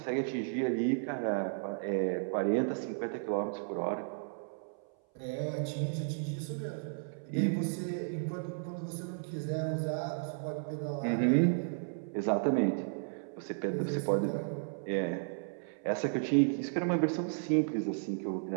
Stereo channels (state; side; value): silent; left; 55 dB below the other